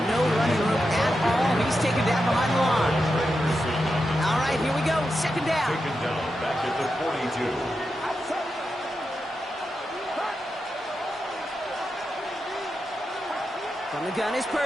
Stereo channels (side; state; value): both; normal; correlation 0.88